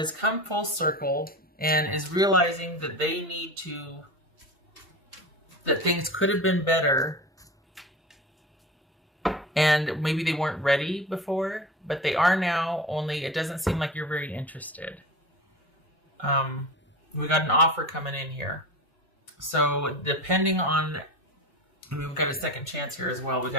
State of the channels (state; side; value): normal; both; correlation 0.30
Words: come full circle and is realizing that that things could have been better, and maybe they weren't ready before, but they are now, only it doesn't seem like you're very interested. We got an offer coming in here. So depending on, we've got a second chance here as well. We